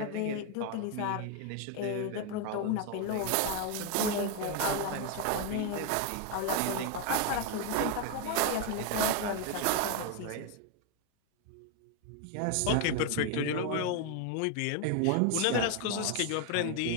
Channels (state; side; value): different; both; correlation 0.01